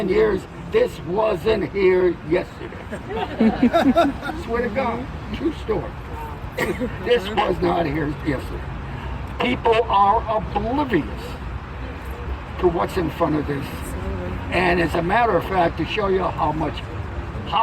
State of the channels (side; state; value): both; identical; correlation 1.00